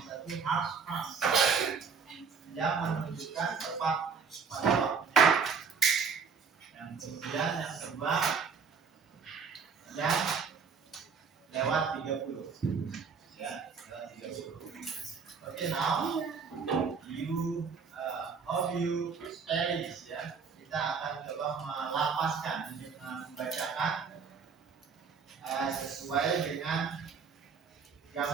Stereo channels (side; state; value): left; quieter; 5.8 dB